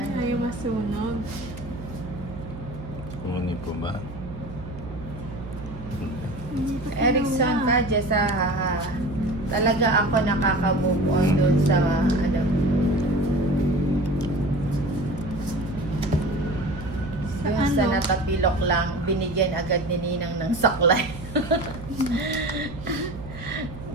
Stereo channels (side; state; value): right; noise; hum, 12 dB below the sound